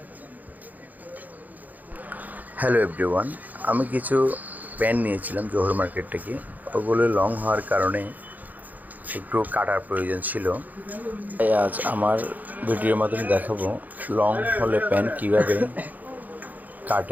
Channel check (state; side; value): late; left; 0.081 ms